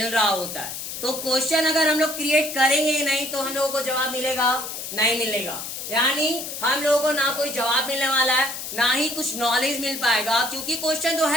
रहा होता है। तो क्वेश्चन अगर हम लोग क्रिएट करेंगे ही नहीं तो हम लोगों को जवाब मिलेगा, नहीं मिलेगा, यानी हम लोगों को ना कोई जवाब मिलने वाला है, ना ही कुछ नॉलेज मिल पाएगा, क्योंकि क्वेश्चन तो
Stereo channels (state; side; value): noise; left; hiss, 7 dB below the sound